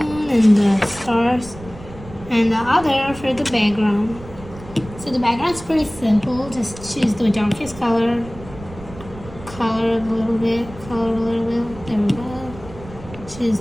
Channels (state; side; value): noise; right; rumble, 16 dB below the sound